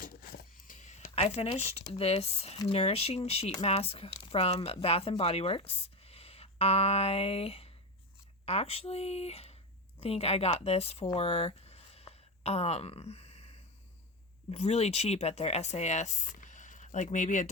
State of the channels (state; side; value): normal; both; correlation 0.17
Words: I finished this nourishing sheet mask from Bath and Body Works. I actually think I got this for really cheap at their SAS, like maybe